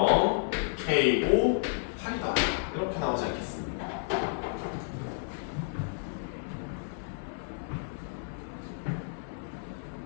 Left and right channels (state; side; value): silent; right; 57 dB below the other